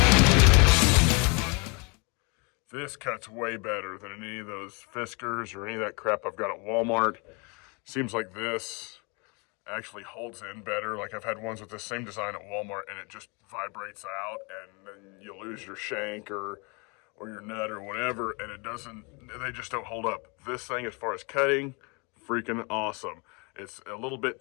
This cuts way better than any of those Fiskars or any of that crap I've got at Walmart. Seems like this actually holds in better. Like I've had ones with the same design at Walmart and it just vibrates out and then you lose your shank or your nut or whatever, and they just don't hold up. This thing, as far as cutting, freaking awesome. It's a little bit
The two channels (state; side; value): quieter; right; 31.0 dB